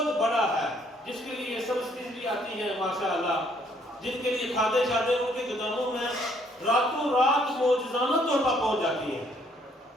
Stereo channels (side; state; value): both; normal; correlation 0.66